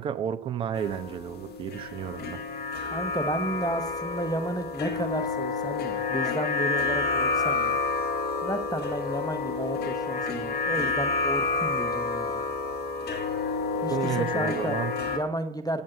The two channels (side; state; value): both; normal; correlation 0.13